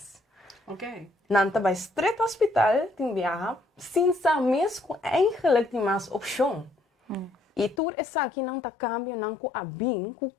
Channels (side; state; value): right; drops out; at 7.8 s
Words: Ok. Não tá vai estreito hospital, tem viaja, sem saber mesmo eigenlijk tem mais opção. E tudo isso aqui não tá cambia não com a bem com